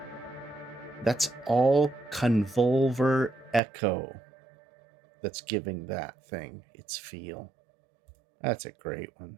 That's all convolver echo that's giving that thing its feel. That's a great one.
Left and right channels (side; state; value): left; drops out; at 3.6 s